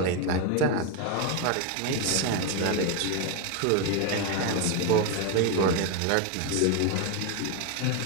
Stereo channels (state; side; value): different; both; correlation 0.01